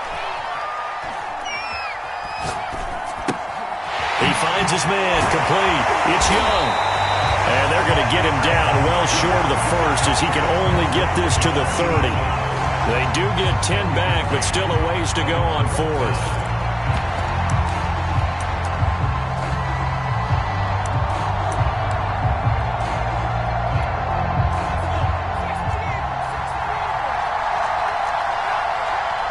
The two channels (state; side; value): identical; both; correlation 1.00